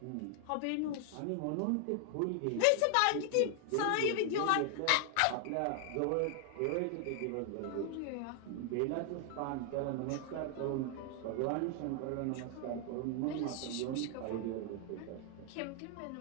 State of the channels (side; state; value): both; different; correlation 0.00